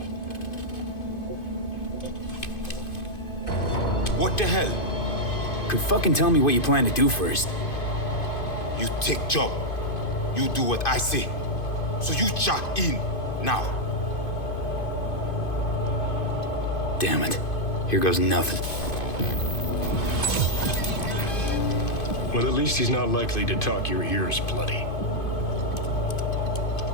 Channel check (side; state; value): right; late; 2.5 ms